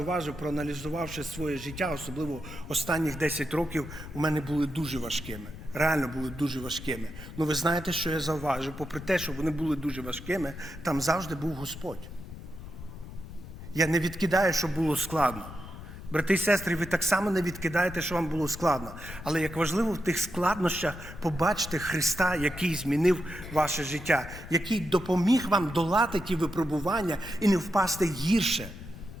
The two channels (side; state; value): left; noise; rumble, 13 dB below the sound